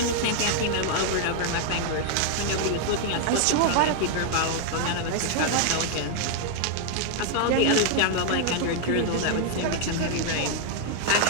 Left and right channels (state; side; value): different; both; correlation 0.00